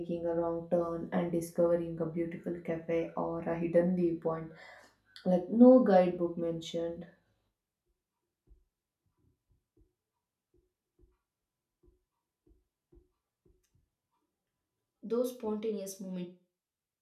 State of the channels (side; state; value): both; identical; correlation 1.00